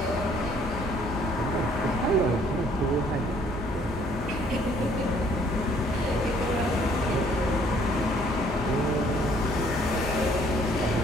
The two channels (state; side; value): normal; both; correlation 0.61